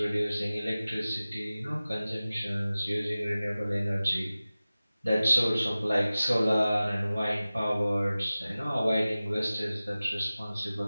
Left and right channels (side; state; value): both; inverted; correlation -0.97